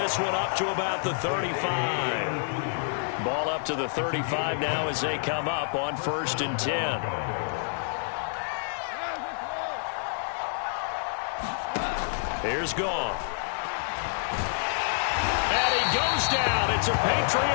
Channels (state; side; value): silent; right; digital silence